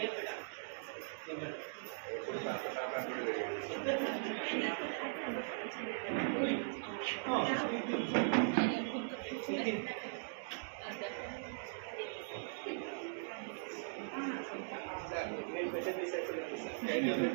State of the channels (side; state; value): left; silent; digital silence